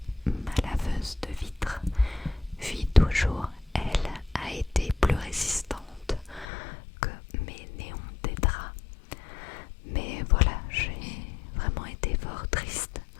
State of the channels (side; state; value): right; drops out; at 6.5 s